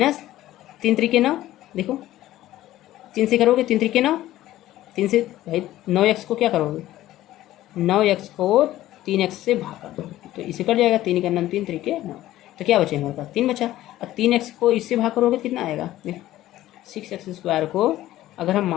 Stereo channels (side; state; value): right; quieter; 14.7 dB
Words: 3 3 9, देखो 3 से करोगे 3 3 9, 3 से भाई 9x को क्या करोगे 9x को 3x से भाग कर दो, तो इसे कट जाएगा, 3 का 9 3 3 9, तो क्या बचे हमारे पास 3 बचा। और 3x को इससे भाग करोगे कितना आएगा, देखो 6x² को अगर हम